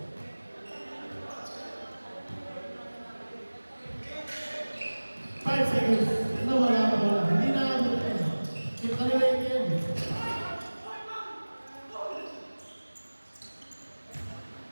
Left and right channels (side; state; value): both; inverted; correlation -1.00